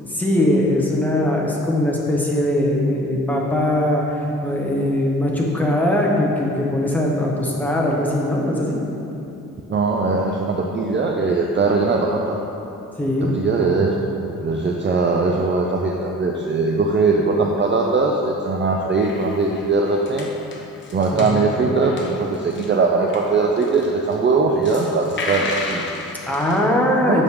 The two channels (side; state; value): both; normal; correlation 0.40